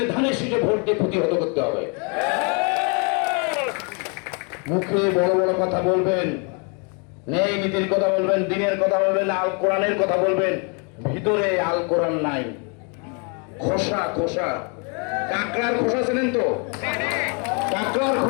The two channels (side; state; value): right; quieter; 35.8 dB